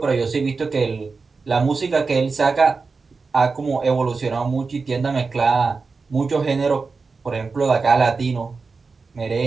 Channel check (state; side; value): quieter; left; 4.5 dB